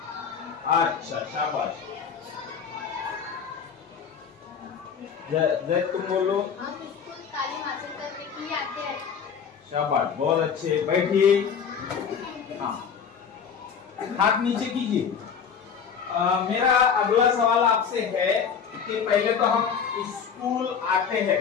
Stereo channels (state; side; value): quieter; right; 6.9 dB